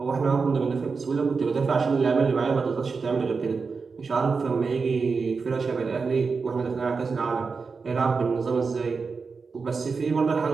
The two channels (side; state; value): left; quieter; 4.8 dB